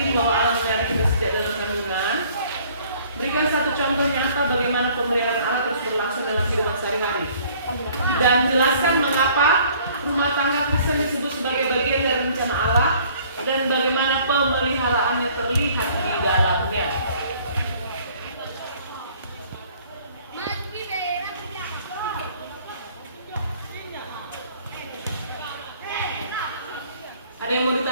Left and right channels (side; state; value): both; inverted; correlation -0.56